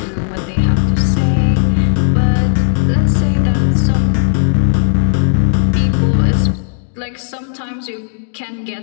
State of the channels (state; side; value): silent; right; digital silence